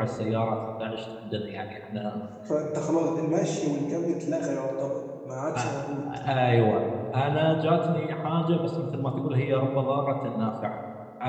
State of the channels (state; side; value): identical; both; correlation 1.00